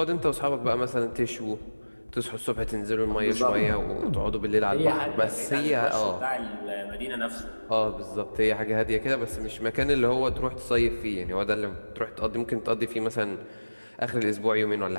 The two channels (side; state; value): both; inverted; correlation -1.00